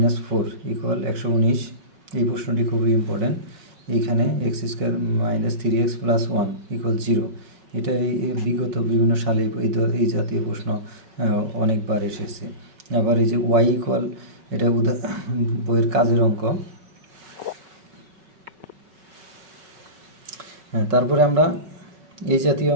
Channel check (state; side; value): late; left; 5.3 ms